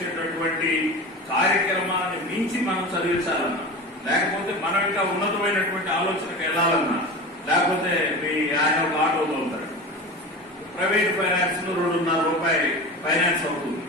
కార్యక్రమాన్ని మించి మనం చదివించాలన్నా, లేకపోతే మనం ఇంకా ఉన్నతమైనటువంటి ఆలోచనకు వెళ్లాలన్నా, లేకపోతే ఆయన ఒక ఆటో తోలుతాడు, ప్రైవేట్ ఫైనాన్స్ లో 2.5 రూపాయలు ఫైనాన్స్ అవుతుంది.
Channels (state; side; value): normal; both; correlation 0.30